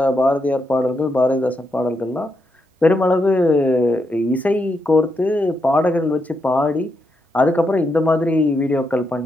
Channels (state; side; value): normal; both; correlation 0.82